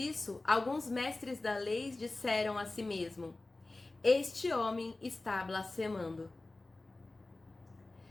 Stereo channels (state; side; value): quieter; right; 3.1 dB